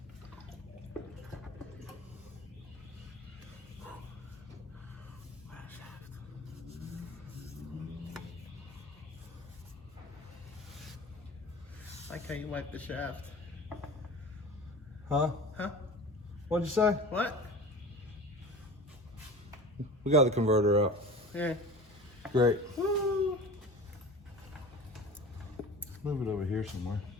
I like how you wipe the shaft. Huh? Huh? What'd you say? What? We got the converter out. Yeah. Great. Woo! Move it over here somewhere.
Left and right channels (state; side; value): normal; both; correlation 0.36